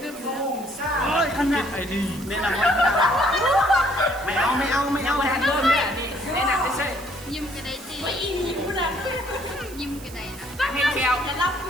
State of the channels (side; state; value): right; noise; hiss, 18 dB below the sound